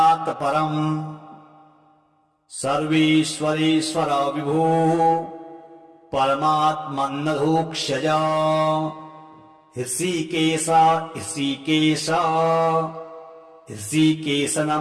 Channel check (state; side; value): identical; both; correlation 1.00